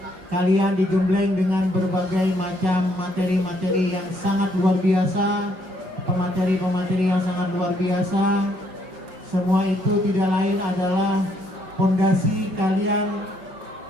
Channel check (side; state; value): left; late; 5.4 ms